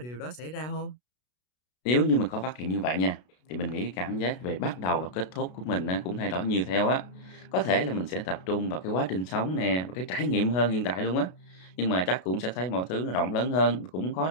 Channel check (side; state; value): right; late; 33 ms